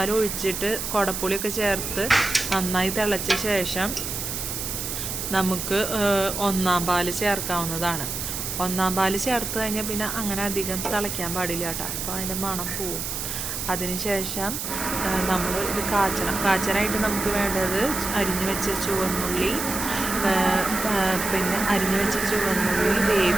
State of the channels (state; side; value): noise; right; hiss, 4 dB below the sound